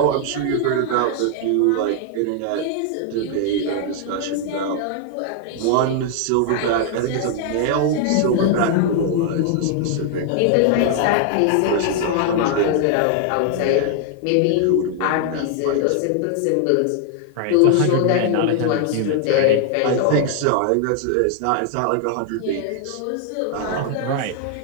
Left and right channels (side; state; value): both; different; correlation 0.00